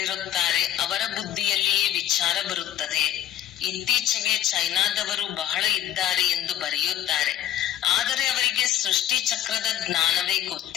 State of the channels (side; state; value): right; quieter; 11.9 dB